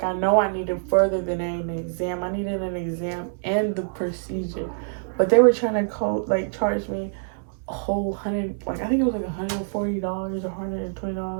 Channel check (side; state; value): left; silent; digital silence